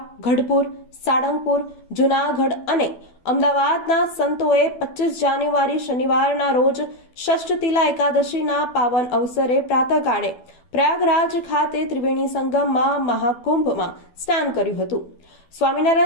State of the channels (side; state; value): right; late; 12 ms